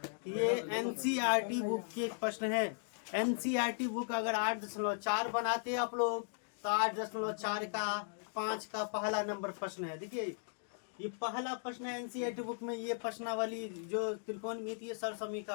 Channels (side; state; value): right; silent; digital silence